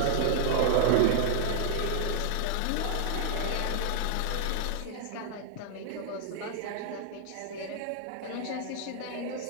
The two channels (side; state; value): both; different; correlation 0.00